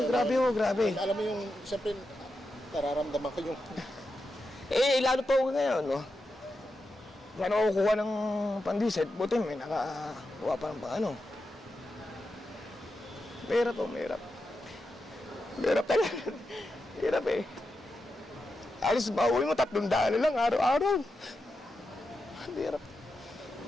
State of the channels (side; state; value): both; normal; correlation 0.88